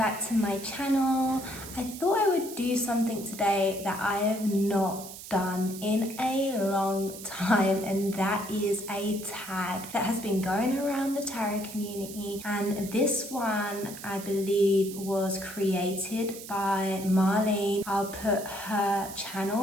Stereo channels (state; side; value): noise; right; hiss, 13 dB below the sound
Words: to my channel. I thought I would do something today that I have not done in a long time, and that is a tag that has been going around the tarot community, and this one I believe was created by Marlene. I'll put her